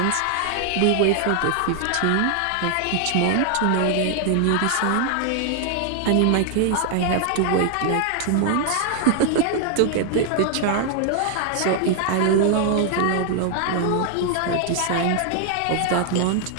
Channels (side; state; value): both; different; correlation 0.00